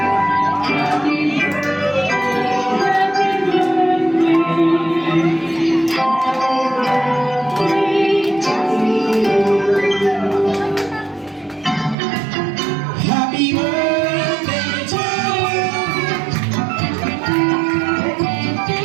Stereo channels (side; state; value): left; drops out; at 12.0 s